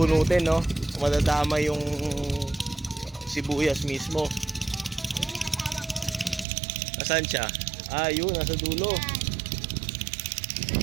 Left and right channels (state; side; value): drops out; left; at 6.5 s